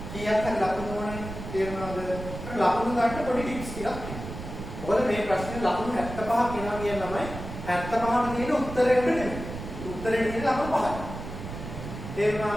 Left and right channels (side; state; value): right; noise; rumble, 9 dB below the sound